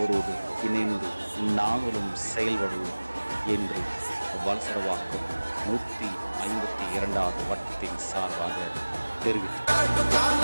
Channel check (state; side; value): inverted; both; correlation -1.00